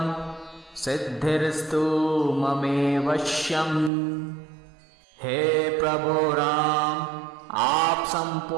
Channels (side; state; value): left; drops out; at 3.9 s